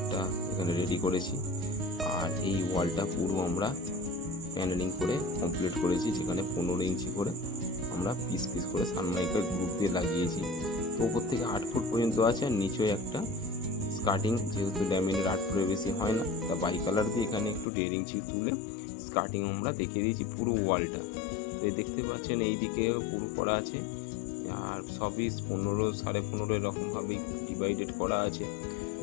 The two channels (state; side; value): drops out; right; at 17.7 s